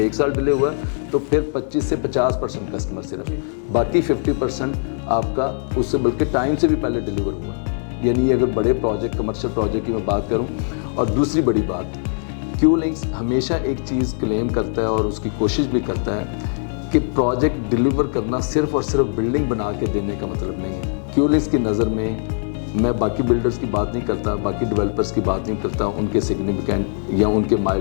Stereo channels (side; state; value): right; silent; 65 dB below the other